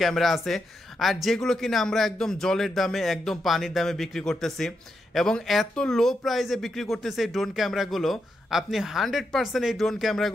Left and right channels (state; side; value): normal; both; correlation 0.84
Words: ক্যামেরা আছে, আর যেগুলো কিনা আমরা একদম জলের দামে, একদম পানির দামে বিক্রি করতেছি এবং এত লো প্রাইসে বিক্রি করতেছে এই ড্রোন ক্যামেরাগুলো। আপনি 100% এই ড্রোন